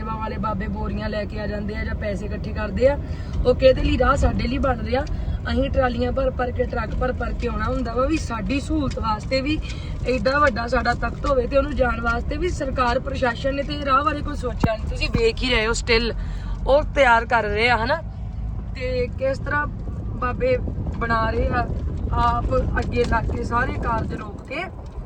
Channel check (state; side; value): identical; both; correlation 1.00